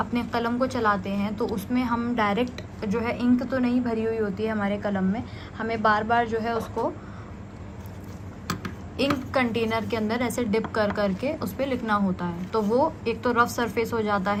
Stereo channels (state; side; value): identical; both; correlation 1.00